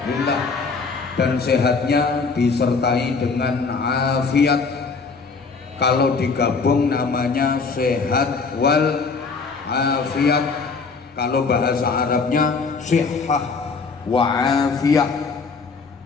dan sehatnya disertai dengan afiat. Kalau digabung namanya sehat wal afiat. Kalau bahasa Arabnya sihah wa afiyah.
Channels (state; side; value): quieter; right; 4.7 dB